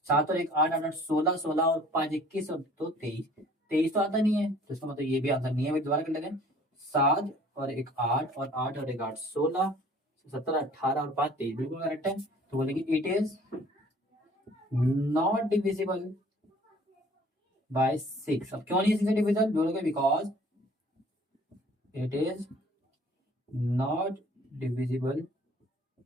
7 और 1 8 8 16 16 और 5 21 और 2 23। 23 तो आता नहीं है, तो इसका मतलब ये भी आंसर नहीं है। दोबारा कर लेते हैं। 7 और 1 8 और 8 और 1 8 16 17 18 और 5 23, बिल्कुल करेक्ट है। तो बोलेंगे it is not divisible by 6। अब क्यों नहीं 6 से डिविजिबल, बोलोगे because it is not divisible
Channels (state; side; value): normal; both; correlation 0.53